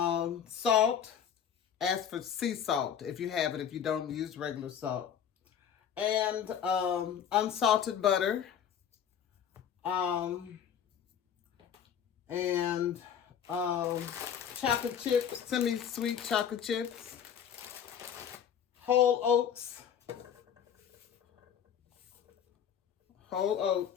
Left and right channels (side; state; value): right; quieter; 8.5 dB